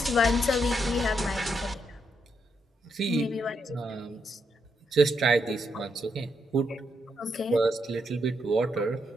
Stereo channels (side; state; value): both; normal; correlation 0.79